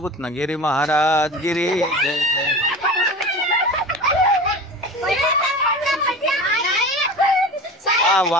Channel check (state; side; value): normal; both; correlation 0.34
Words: ना. गिरी महाराज गिरी